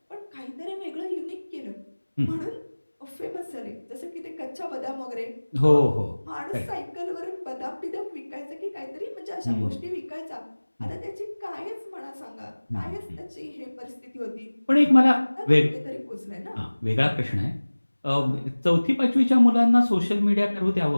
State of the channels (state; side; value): inverted; both; correlation -1.00